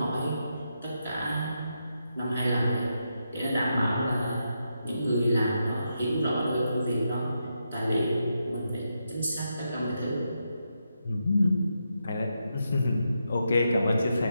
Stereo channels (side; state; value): both; inverted; correlation -0.84